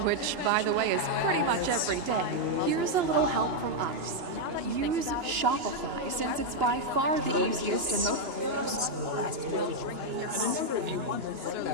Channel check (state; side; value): late; left; 2.9 ms